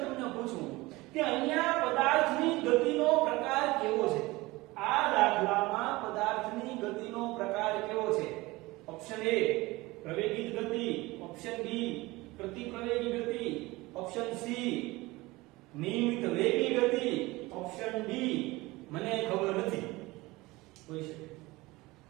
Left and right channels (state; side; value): quieter; left; 21.0 dB